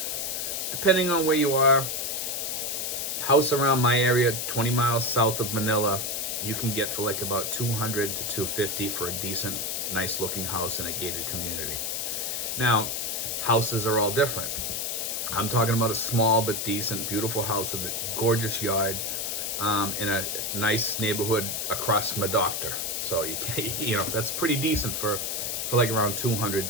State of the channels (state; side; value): noise; left; hiss, 2 dB below the sound